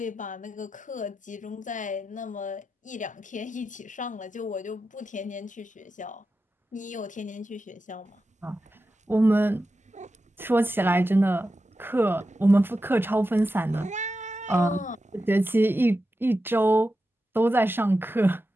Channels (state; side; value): normal; both; correlation 0.91